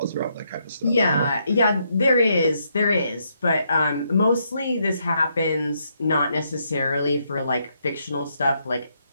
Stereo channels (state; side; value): inverted; both; correlation -0.76